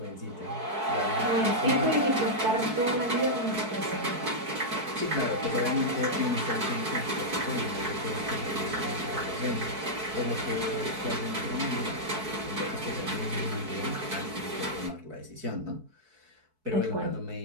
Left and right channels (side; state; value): left; late; 4.6 ms